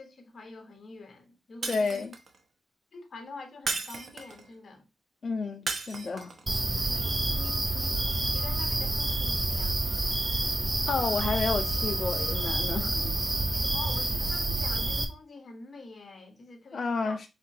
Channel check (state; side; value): normal; both; correlation 0.88